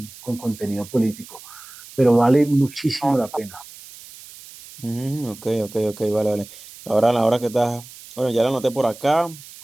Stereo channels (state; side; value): noise; right; hiss, 18 dB below the sound